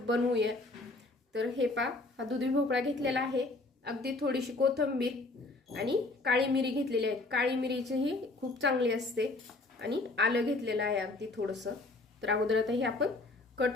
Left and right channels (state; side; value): quieter; right; 3.1 dB